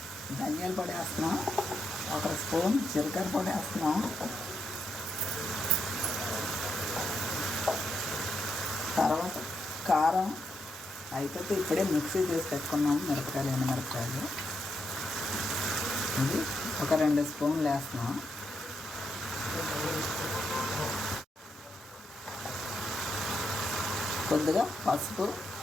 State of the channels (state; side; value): normal; both; correlation 0.81